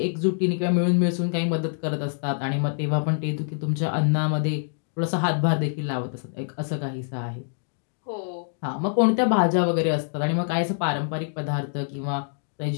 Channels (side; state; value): right; silent; digital silence